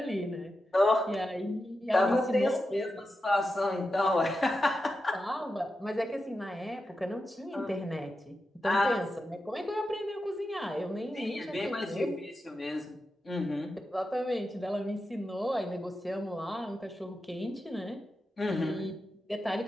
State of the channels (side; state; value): both; normal; correlation 0.89